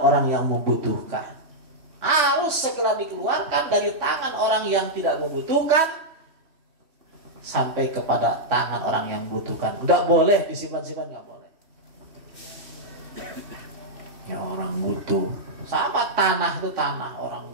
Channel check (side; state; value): left; late; 3.1 ms